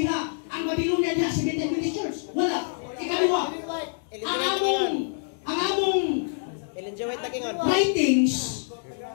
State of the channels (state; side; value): silent; right; digital silence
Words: Ang Babylonia diha sa Methodist Church. Wala. Ikaliwa. Ang among writings,